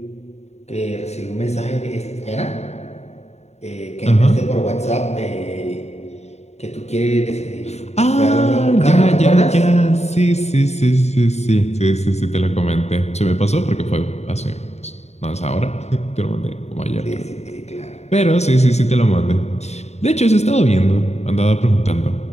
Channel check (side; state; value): right; late; 0.32 ms